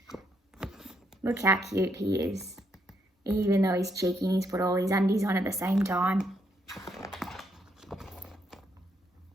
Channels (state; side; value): normal; both; correlation 0.75